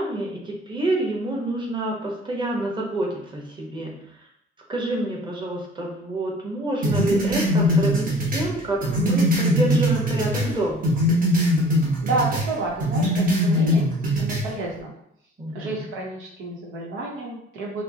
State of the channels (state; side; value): normal; both; correlation 0.49